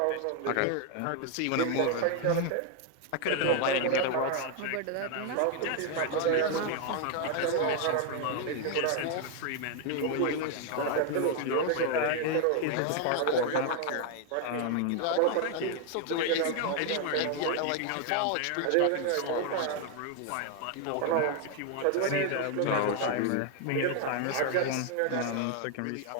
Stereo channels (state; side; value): different; both; correlation 0.00